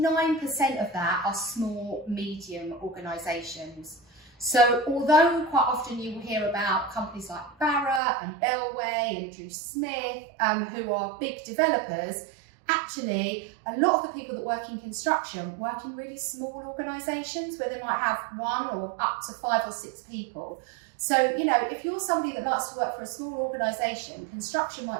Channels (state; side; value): drops out; left; at 8.0 s